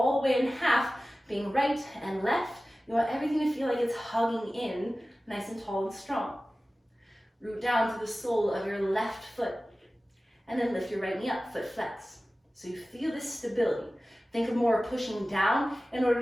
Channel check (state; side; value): normal; both; correlation 0.96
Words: the way in half, being right and left, you want everything to feel like it's hugging in, nice and tall and strong. Root down to the sole of your left foot, and then lift your right knee up, foot flex. So you feel this stability. Think of more pushing down in